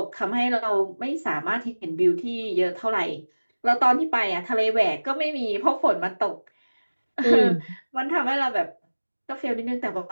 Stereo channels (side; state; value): both; inverted; correlation -1.00